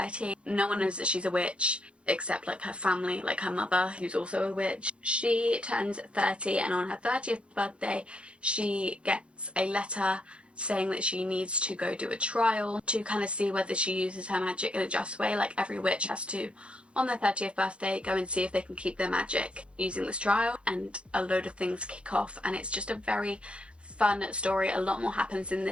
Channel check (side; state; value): left; late; 0.059 ms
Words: No one knows that she's a witch except like her family, like her mother, who's also a witch. She turns 30 and on her 30th birthday she gets a letter saying that she needs to go do a trial to kind of see whether she uses her magic in a just way. Like every witch has to, on their 30th birthday, go and see if they can keep their magic using this trial, and a load of things kick off, and it's just a very fun story. A lot more happens in